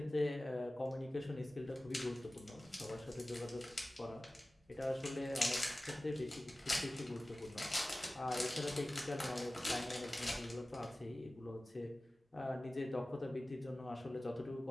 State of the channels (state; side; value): normal; both; correlation 0.97